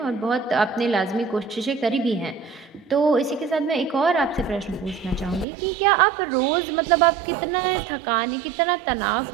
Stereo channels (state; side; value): drops out; left; at 5.5 s